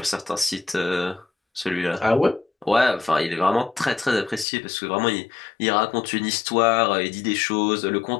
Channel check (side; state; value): right; drops out; at 4.5 s